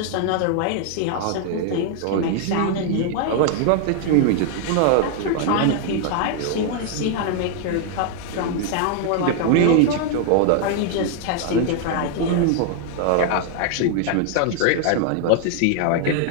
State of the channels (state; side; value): different; both; correlation 0.00